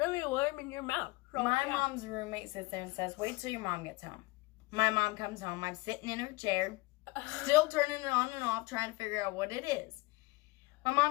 warm in your mouth. So, my mom's roommate sits there and says, wait till your mom gets home. My mom comes home. I'm sitting in her chair, still turning it on and off, trying to figure out what it is. My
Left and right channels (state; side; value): quieter; right; 23.0 dB